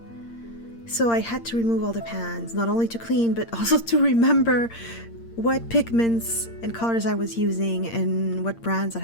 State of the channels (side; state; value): right; late; 8.7 ms